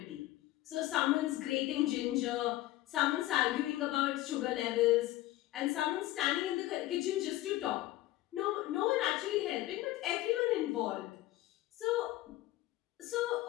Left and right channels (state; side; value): quieter; right; 16.4 dB